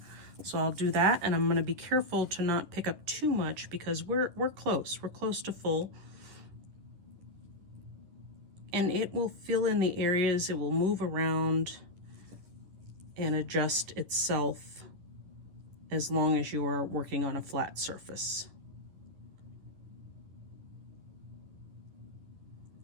So I'll do that, and I'm going to be careful to not pick up too much because we're close. We're close to full. And it will fill in the areas, it will move around and adjust itself as long as you are working on a flat surface.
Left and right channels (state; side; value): late; left; 10 ms